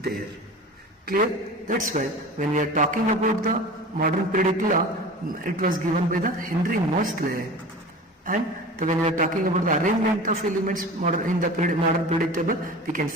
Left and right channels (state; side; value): normal; both; correlation 0.36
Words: Clear? That's why when we are talking about the modern periodic law, it was given by the Henry Moseley. And when we are talking about the arrangement of elements in the modern periodic table, we can